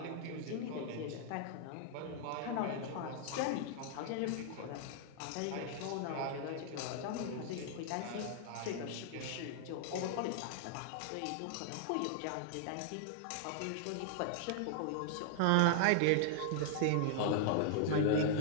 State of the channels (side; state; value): both; different; correlation -0.01